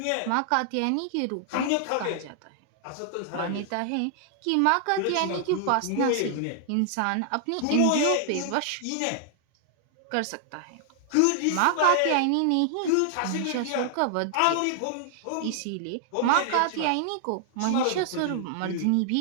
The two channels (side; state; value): both; different; correlation 0.00